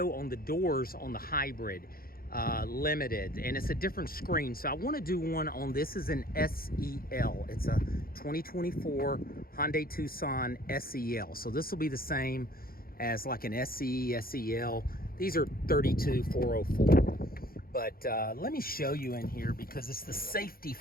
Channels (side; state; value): right; late; 0.43 ms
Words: on the doors on the hybrid limited, and it's a different screen. So I want to do one on this is an SEL. It's a 2024 Hyundai Tucson SEL. So this will be the same as like an SE, SEL. These are 32404. But let me show you in here because it's the safety